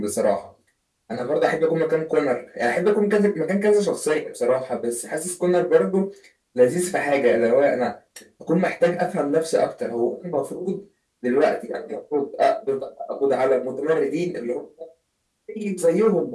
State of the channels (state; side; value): identical; both; correlation 1.00